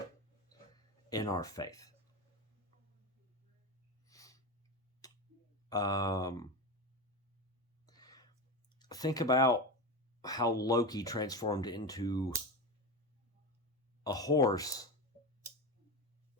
in our faith. Think about how Loki transformed into a horse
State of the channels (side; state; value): both; normal; correlation 0.20